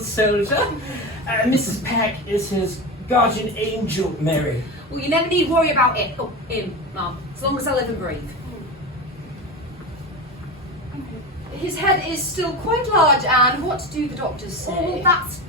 Mrs. Peck is his guardian angel, Mary. Well, you never need worry about it. Oh, him, Mum. As long as I live and breathe. His head is still quite large, and what do the doctors say? Oh, that's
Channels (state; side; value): normal; both; correlation 0.24